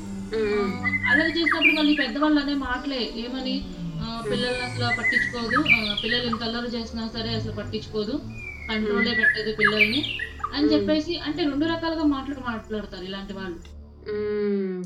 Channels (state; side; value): identical; both; correlation 1.00